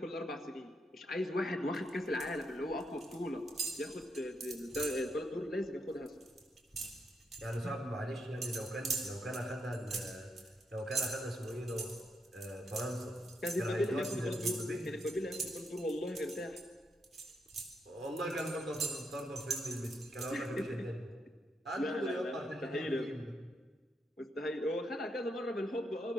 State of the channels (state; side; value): normal; both; correlation 0.79